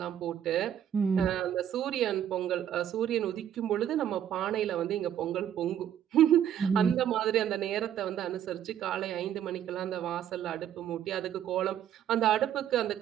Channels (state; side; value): quieter; left; 10.1 dB